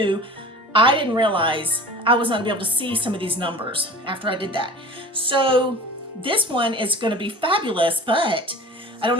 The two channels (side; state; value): both; normal; correlation 0.41